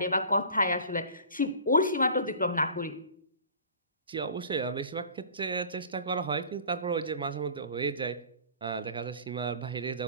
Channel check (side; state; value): both; inverted; correlation -0.42